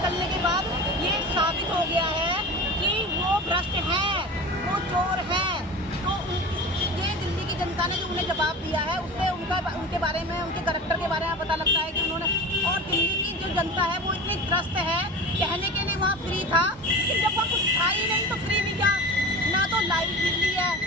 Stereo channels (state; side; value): normal; both; correlation 0.32